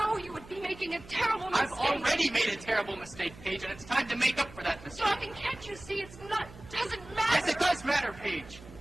you would be making a terrible mistake. I've already made a terrible mistake, Paige, and it's time to make up for that mistake. Darling, can't you see it's not, doesn't matter? Yes, it does matter, Paige.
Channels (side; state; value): right; noise; hum, 19 dB below the sound